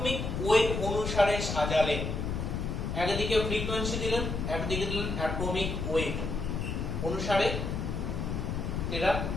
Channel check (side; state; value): left; noise; rumble, 2 dB below the sound